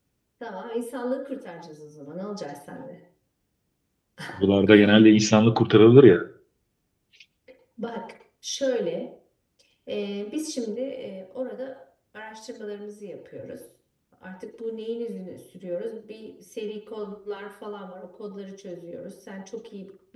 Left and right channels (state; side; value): identical; both; correlation 1.00